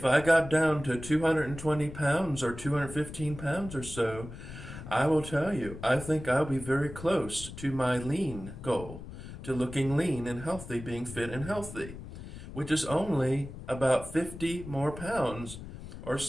I got down to 220 pounds or 215 pounds or so, I will tell you, I think I'll be very close to my lean goal, to looking lean and healthy, being fit and healthy, which is only about 50 more pounds or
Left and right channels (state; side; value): noise; left; rumble, 12 dB below the sound